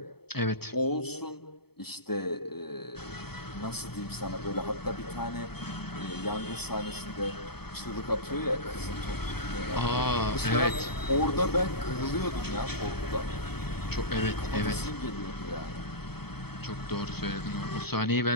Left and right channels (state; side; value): late; right; 0.97 ms